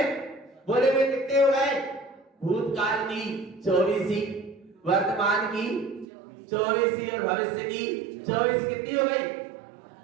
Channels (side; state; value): left; drops out; at 6.1 s